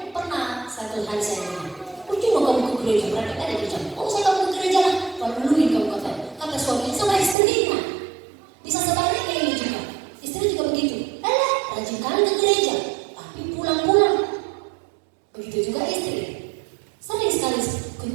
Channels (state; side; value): drops out; left; at 7.4 s